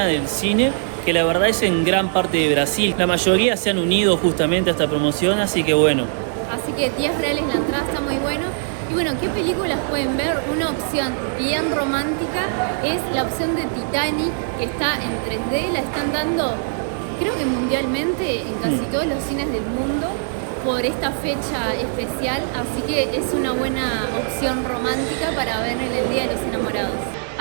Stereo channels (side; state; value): left; silent; 57 dB below the other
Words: del cine, que la verdad es en gran parte de Brasil. La mayoría se han unido justamente a esta promoción, así que bueno. Así que 10 reales la entrada, está muy bueno. Y bueno, ¿qué películas pueden ver? Una opción bien romántica es la opción de Titanic, que está en 3D, la están dando creo que mundialmente en casi todos los cines del mundo por esta fecha especial, así que es una buena opción romántica para ver en el Día de los Enamorados.